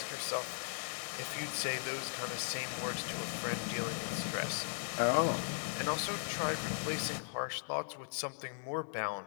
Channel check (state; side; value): silent; right; 52 dB below the other